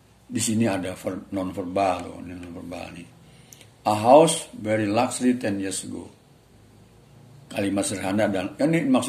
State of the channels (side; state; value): both; identical; correlation 1.00